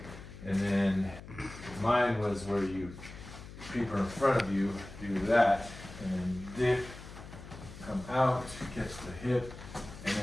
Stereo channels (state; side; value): noise; left; hum, 14 dB below the sound